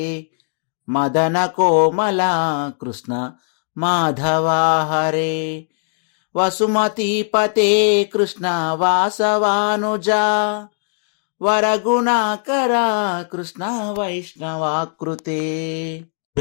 మదన కోమల కృష్ణ మాధవా హరే వసుమతీపతే కృష్ణ వాసవానుజా వరగుణాకర కృష్ణ వైష్ణవాకృతే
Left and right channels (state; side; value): silent; right; digital silence